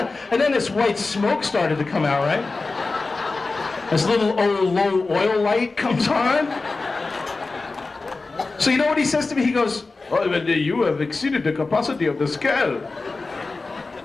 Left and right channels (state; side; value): quieter; right; 3.7 dB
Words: And then this white smoke started to come out, right? This little low oil light comes on. So you know what he says to me? He goes, oh, you have exceeded the capacity of the scale.